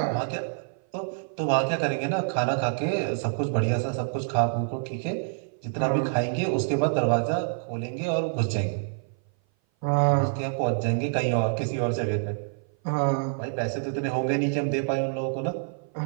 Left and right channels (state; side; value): silent; left; 57 dB below the other